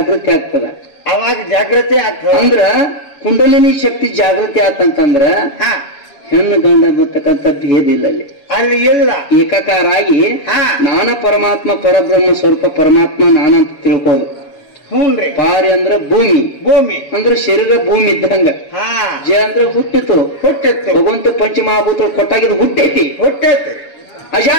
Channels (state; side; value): late; right; 7.1 ms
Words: ಆಗ್ತದ ಅವಾಗ ಜಾಗೃತಿ ಆಗ್ತದ ಅಂದ್ರ ಕುಂಡಲಿನಿ ಶಕ್ತಿ ಜಾಗೃತಿ ಆತಂತಂದ್ರ ಹೆಣ್ಣು ಗಂಡ ಬರ್ತಕ್ಕಂಥ ಭೇದ ಇಲ್ಲ ಅಲ್ಲಿ. ಅಲ್ಲಿ ಇಲ್ಲ, ಏಕಾಕಾರ ಆಗಿ ನಾನ ಪರಮಾತ್ಮ ಪರಬ್ರಹ್ಮ ಸ್ವರೂಪ ಪರಮಾತ್ಮ ನಾನಂತ ತಿಳ್ಕೋದು. ಹ್ಞೂನ್ರಿ. ಪಾರಿ ಅಂದ್ರ ಭೂಮಿ, ಭೂಮಿ ಅಂದ್ರೆ ಶರೀರ ಭೂಮಿ ಇದ್ದಂಗ. ಜ ಅಂದ್ರೆ ಹುಟ್ಟಿತು, ಭಗವಂತ ಪಂಚಮಹಾಭೂತ ಕೊಟ್ಟಾಗಿದ್ದು ಹುಟ್ಟೈತಿ.